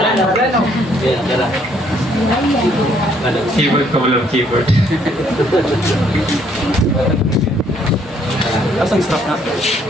Keyboard ko walang keyboard. Asang strap na?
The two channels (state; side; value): normal; both; correlation 0.66